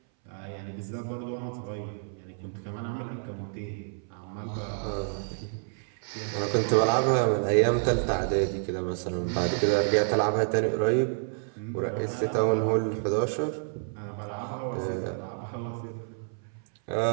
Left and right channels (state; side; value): silent; left; 59 dB below the other